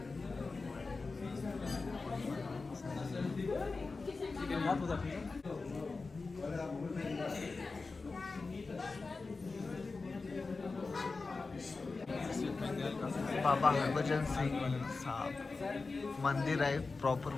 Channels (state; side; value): quieter; right; 4.0 dB